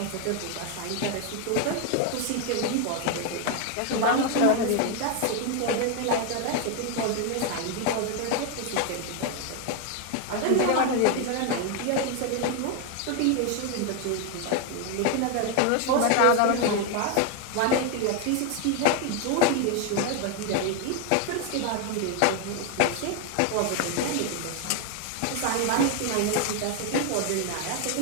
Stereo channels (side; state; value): both; different; correlation 0.01